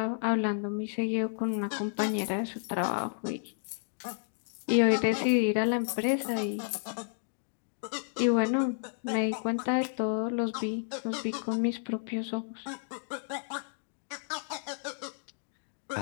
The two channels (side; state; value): right; silent; digital silence